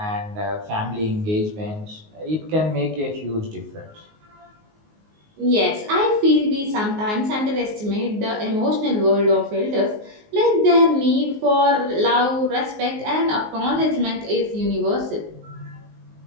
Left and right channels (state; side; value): late; left; 19 ms